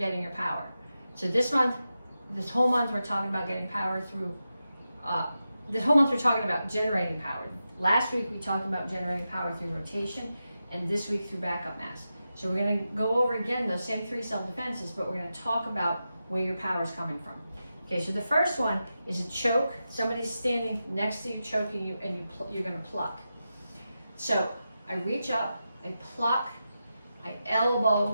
your power. So this whole month, we're talking about getting power through, this whole month we're talking about generating power. Last week we talked about generating power through rotation, and this week through backup mass. So we're going to go over again those same 3 self-defenses, but we're going to talk about where your power is coming from. Okay, so the first one is a choke. Somebody's standing next to you, choking you, and you're going to pluck. So I reach up, I pluck, I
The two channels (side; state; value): both; inverted; correlation -0.90